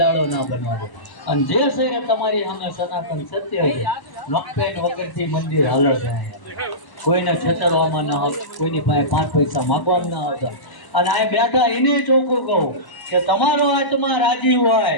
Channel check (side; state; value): right; late; 1.0 ms